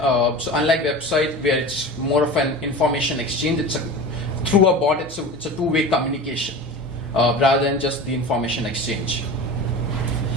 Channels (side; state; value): both; normal; correlation 0.32